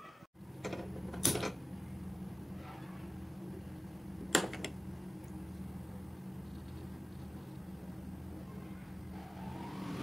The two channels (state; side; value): normal; both; correlation 0.96